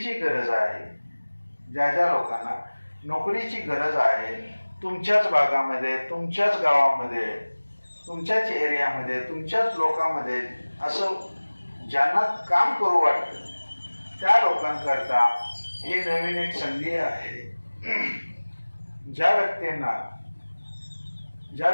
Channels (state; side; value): inverted; both; correlation -1.00